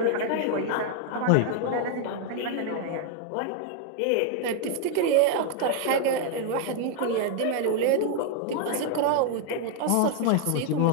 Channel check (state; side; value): different; both; correlation 0.00